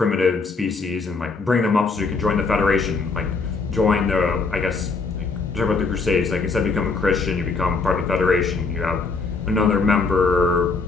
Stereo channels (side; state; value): right; quieter; 4.2 dB